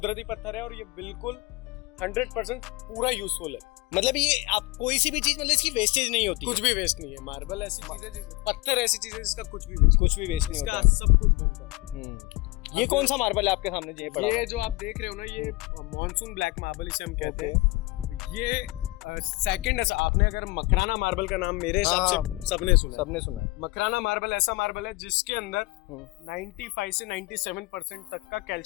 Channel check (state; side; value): quieter; right; 21.4 dB